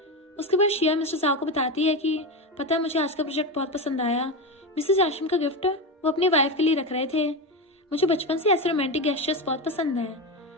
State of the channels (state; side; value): normal; both; correlation 0.17